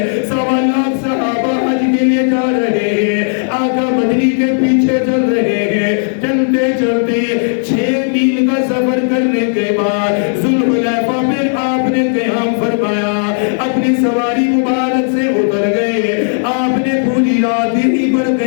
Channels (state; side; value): silent; right; digital silence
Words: 1.25 لاکھ صحابہ حج کے لیے جا رہے ہیں، آقا مدنی کے پیچھے چل رہے ہیں، چلتے چلتے 6 میل کا سفر کرنے کے بعد ذوالحلیفہ پہ آپ نے قیام فرمایا، اپنی سواری مبارک سے اتر گئے، آپ نے پوری رات ہی پر